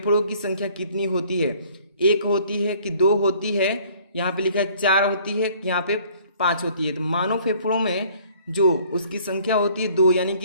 की संख्या कितनी होती है? 1 होती है कि 2 होती है? यहाँ पे लिखा है 4 होती है, यहाँ पे 5 होती है। तो मानव फेफड़ों में जो उसकी संख्या होती है 2, यानी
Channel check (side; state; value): both; inverted; correlation -0.56